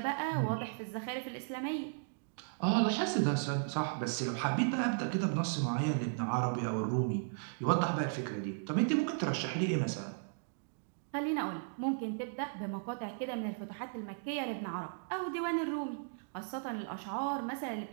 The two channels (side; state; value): left; silent; digital silence